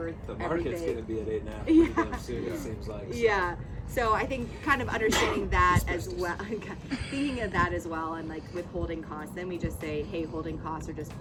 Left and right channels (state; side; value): identical; both; correlation 1.00